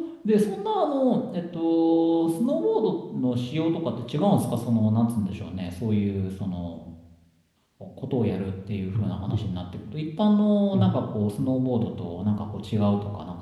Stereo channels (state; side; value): identical; both; correlation 1.00